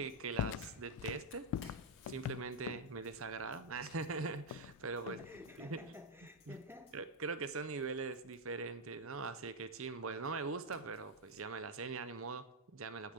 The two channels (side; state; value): both; normal; correlation 0.00